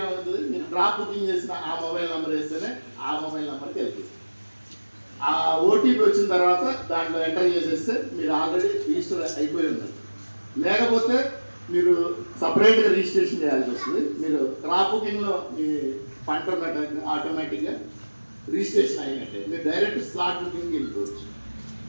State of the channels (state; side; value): inverted; both; correlation -1.00